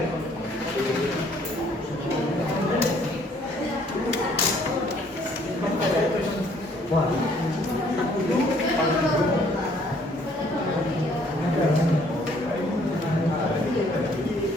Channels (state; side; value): normal; both; correlation 0.62